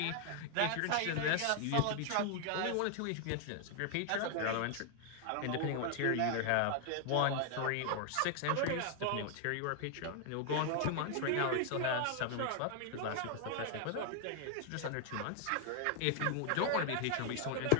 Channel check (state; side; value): different; both; correlation 0.00